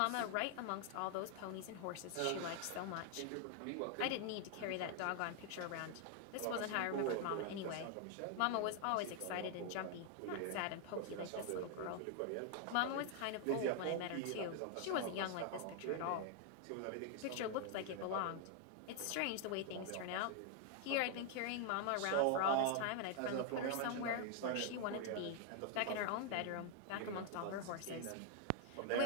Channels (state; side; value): different; both; correlation 0.00